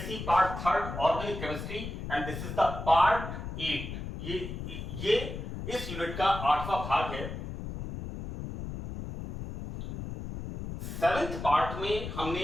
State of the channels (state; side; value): noise; left; rumble, 7 dB below the sound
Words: Part 3rd Organic Chemistry and this is the Part 8. ये इस unit का 8वां भाग है. 7th part में हमने